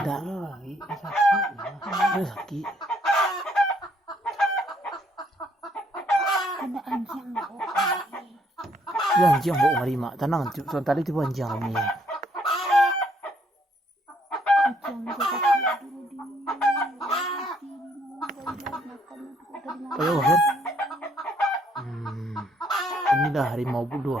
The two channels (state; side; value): normal; both; correlation 0.68